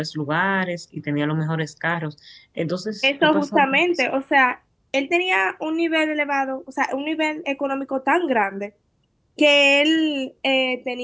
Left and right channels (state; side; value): identical; both; correlation 1.00